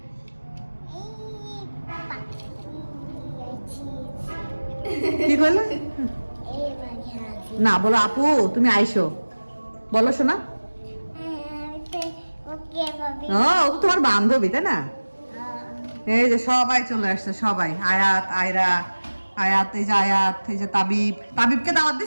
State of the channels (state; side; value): inverted; both; correlation -1.00